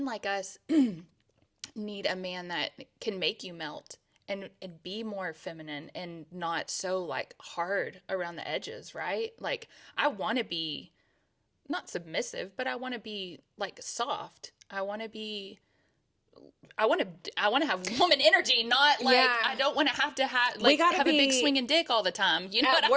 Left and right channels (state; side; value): identical; both; correlation 1.00